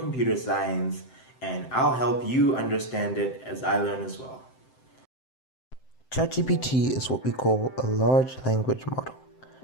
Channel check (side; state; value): right; late; 7.7 ms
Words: science, and I'll help you understand it as I learn as well. Chat-GPT is what we call a large language model.